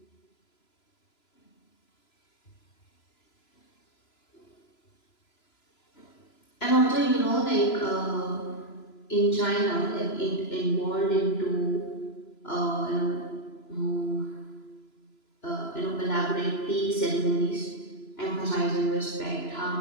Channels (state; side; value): late; right; 3.0 ms